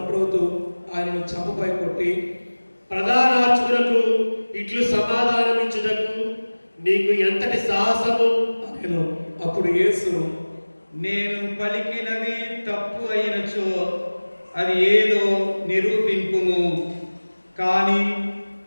ఆయనను చంపపై కొట్టి, ప్రధానార్చకులకు ఇట్లు సమాధానమిచ్చుటకు నీకు ఎంతటి సాహసము అనెను. అప్పుడు యేసు, నేను పలికినది తప్పు అయినచో అది ఏదో నిరూపింపుము. కానీ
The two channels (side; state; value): both; inverted; correlation -1.00